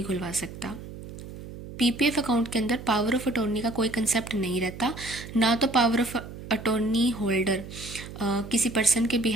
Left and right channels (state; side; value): noise; right; hum, 13 dB below the sound